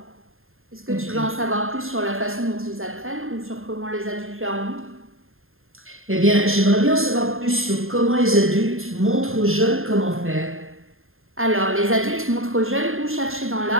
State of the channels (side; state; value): left; late; 0.61 ms